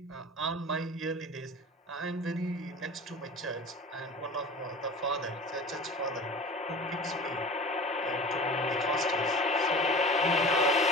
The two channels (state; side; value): normal; both; correlation 0.37